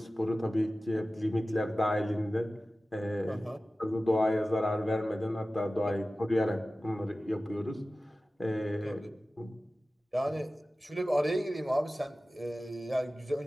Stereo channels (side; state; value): both; normal; correlation 0.96